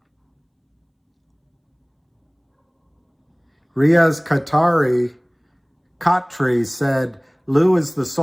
Riaz Khatri said, Lou is the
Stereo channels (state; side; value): identical; both; correlation 1.00